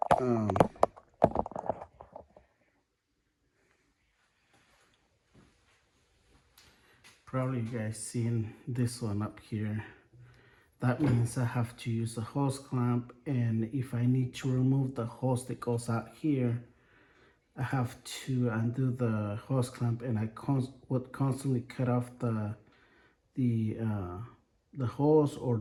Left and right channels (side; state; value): both; identical; correlation 1.00